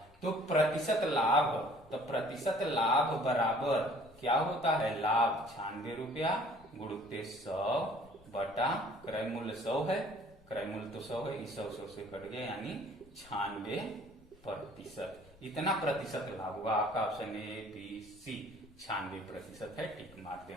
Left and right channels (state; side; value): noise; left; rumble, 25 dB below the sound